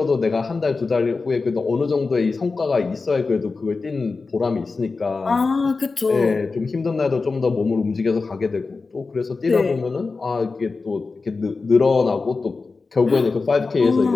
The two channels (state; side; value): quieter; right; 4.1 dB